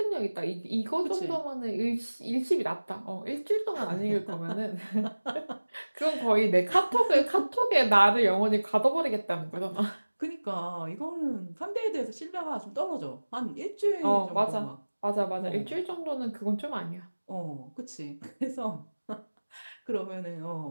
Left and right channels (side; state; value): both; inverted; correlation -1.00